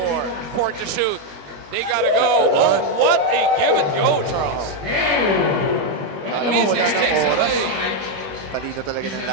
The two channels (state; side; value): late; left; 21 ms